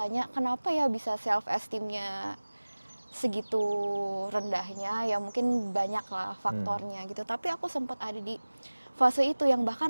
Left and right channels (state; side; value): inverted; both; correlation -1.00